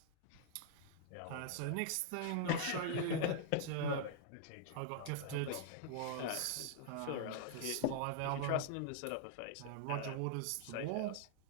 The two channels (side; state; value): both; different; correlation -0.01